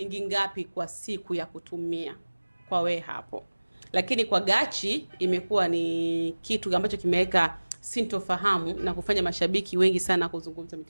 ngapi kwa siku ya kutumia kwa we hapo? Lakini kwa Gachi imekuwa ni kitu ambacho kimeweka sintofahamu na kufanya mashabiki wengi sana kuzungumza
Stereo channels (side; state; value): both; inverted; correlation -1.00